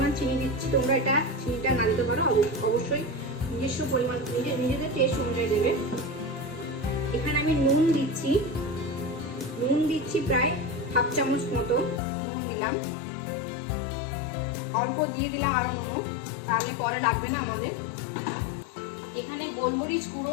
চিনি দিচ্ছি। তোমরা চিনিটা না দিতে পারো, অবশ্যই নিজস্ব পরিমাণ নিজেদের টেস্ট অনুযায়ী দেবে। এখানে আমি নুন দিচ্ছি প্রায় 1/2 চামচ মতো নুন দিলাম। অল্প দিয়ে দিলাম আরো নুন, তাহলে পরে লাগবে না আমাদের। এখানে গোলমরিচ গুঁড়ো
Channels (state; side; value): drops out; right; at 12.0 s